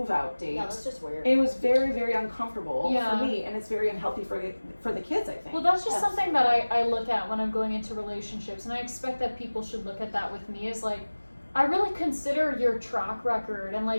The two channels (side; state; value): both; inverted; correlation -1.00